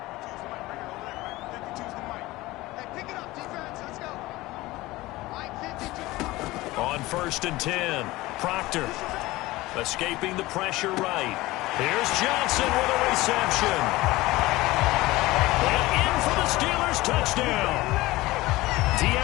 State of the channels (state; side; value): quieter; right; 19.2 dB